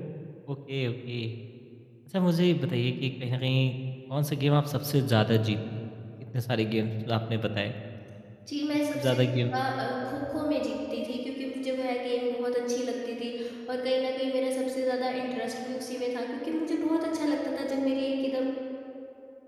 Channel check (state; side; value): identical; both; correlation 1.00